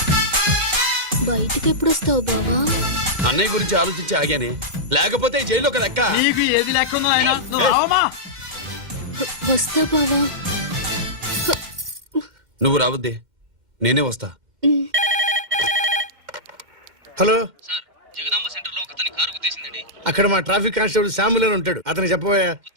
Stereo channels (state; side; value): late; left; 2.1 ms